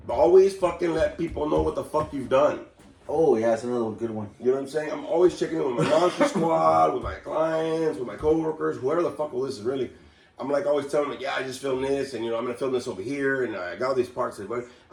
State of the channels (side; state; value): both; identical; correlation 1.00